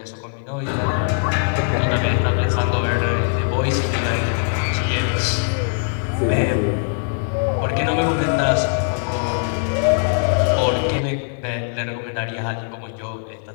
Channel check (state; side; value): silent; right; 64 dB below the other